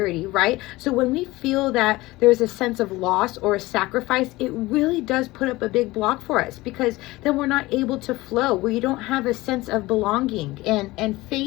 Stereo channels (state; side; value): quieter; right; 19.7 dB